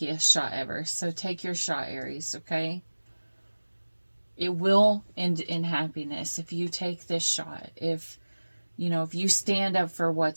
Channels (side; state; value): both; inverted; correlation -1.00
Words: shot ever. So take your shot, Aries, okay? It will end in happiness if you take this shot. If you stand up for